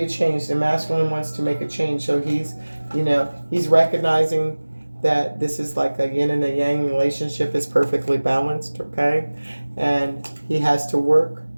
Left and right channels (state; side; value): inverted; both; correlation -1.00